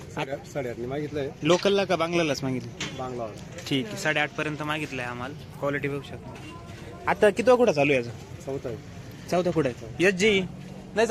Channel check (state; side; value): identical; both; correlation 1.00